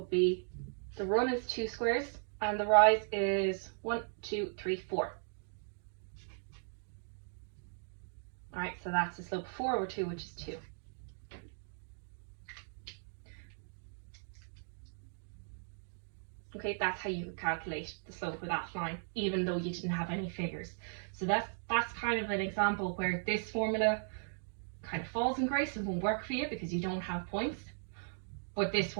be, the run is 2 squares and the rise is 1, 2, 3, 4. Alright, so that's the slope of 4 over 2, which is 2. Okay, that's how you would calculate the slope of that line, even though you didn't have any figures. So that's kind of an example where this formula kind of falls in grace and won't work for you because you don't have points, but this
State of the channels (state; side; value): silent; left; digital silence